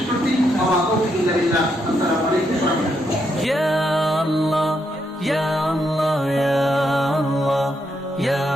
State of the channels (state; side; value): normal; both; correlation 0.79